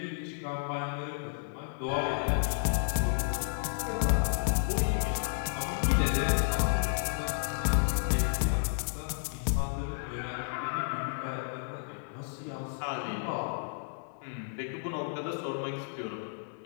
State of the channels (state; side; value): silent; right; digital silence